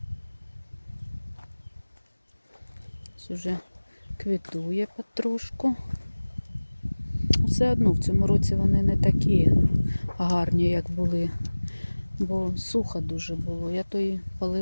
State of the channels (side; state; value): both; inverted; correlation -1.00